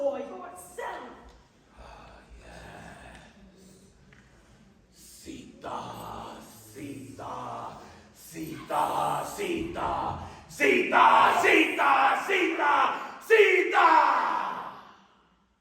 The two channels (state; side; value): identical; both; correlation 1.00